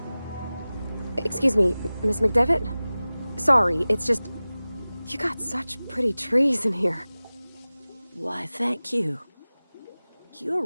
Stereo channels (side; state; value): both; inverted; correlation -0.98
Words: Excuse me, Miss McDevitt? Sorry, it's just... You got such pretty trees in here. Why, thank you. You're